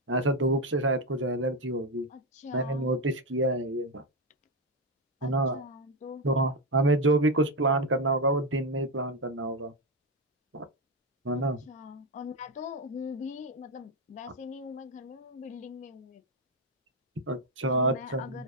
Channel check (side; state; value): both; normal; correlation 0.09